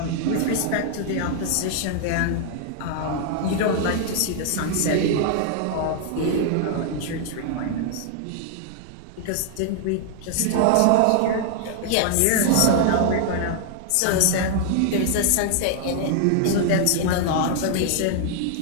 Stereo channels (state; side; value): different; both; correlation 0.00